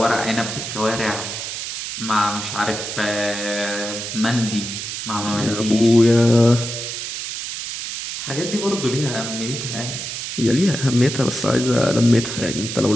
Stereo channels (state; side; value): noise; right; hiss, 6 dB below the sound